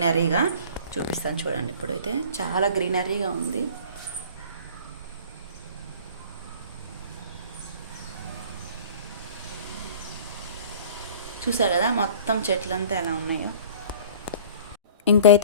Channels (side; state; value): both; inverted; correlation -0.45